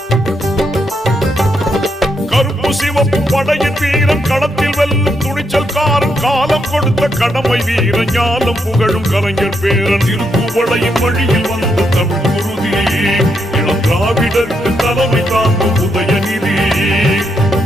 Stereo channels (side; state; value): both; normal; correlation 0.79